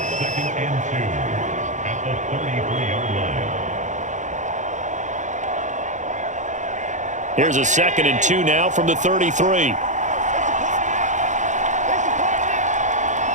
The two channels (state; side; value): late; left; 0.35 ms